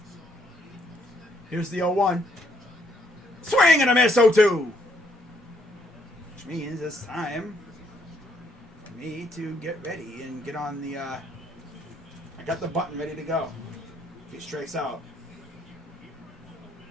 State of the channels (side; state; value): both; normal; correlation 0.70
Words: Here's the 0-1. Swing and a miss, 0-2. Which means it's time for me to get ready and get on the... I got the button ready to go. If he strikes out.